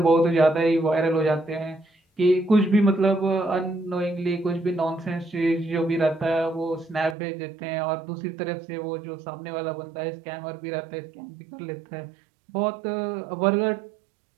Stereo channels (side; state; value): left; drops out; at 7.2 s